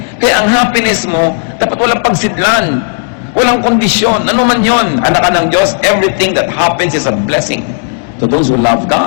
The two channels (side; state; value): right; silent; digital silence